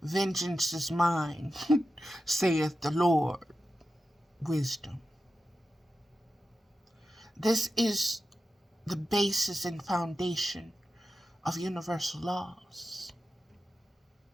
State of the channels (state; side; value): normal; both; correlation 0.91